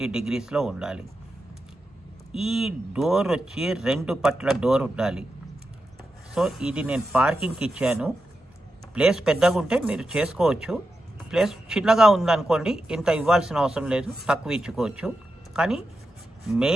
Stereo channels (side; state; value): both; normal; correlation 0.89